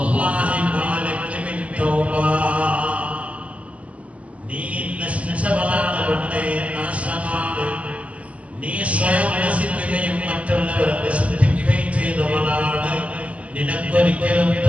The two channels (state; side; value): late; left; 0.066 ms